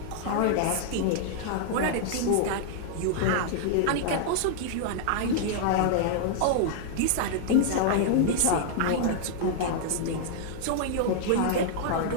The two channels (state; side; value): different; both; correlation -0.01